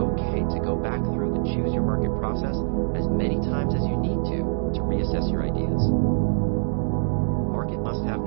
to go back through the Choose Your Market process as many times as you need to reassess your ideas. Market must-have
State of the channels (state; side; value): silent; left; digital silence